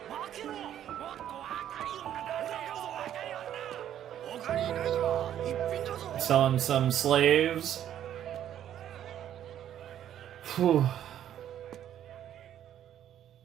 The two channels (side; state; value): left; quieter; 10.8 dB